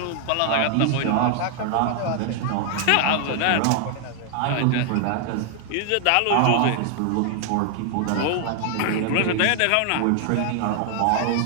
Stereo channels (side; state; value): both; different; correlation 0.00